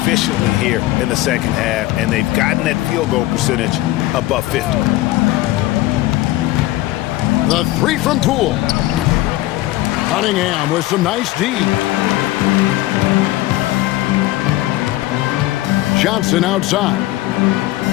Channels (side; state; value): right; quieter; 17.0 dB